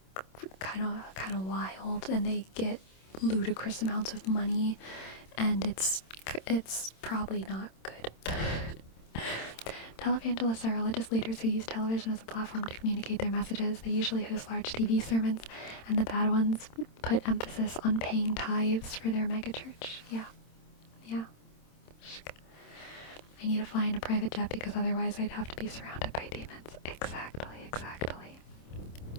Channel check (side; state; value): right; late; 27 ms